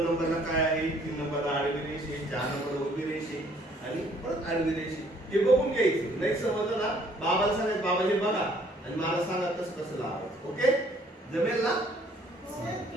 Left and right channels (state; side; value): normal; both; correlation 0.61